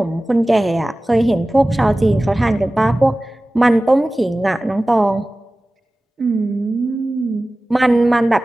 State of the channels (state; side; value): normal; both; correlation 0.97